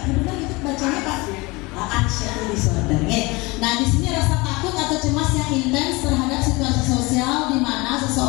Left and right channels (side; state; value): right; quieter; 24.4 dB